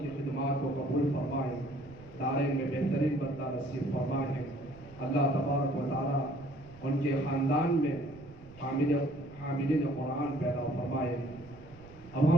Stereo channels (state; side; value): noise; right; rumble, 20 dB below the sound